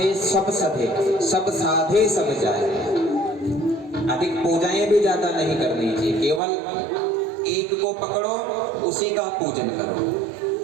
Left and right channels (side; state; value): left; drops out; at 6.4 s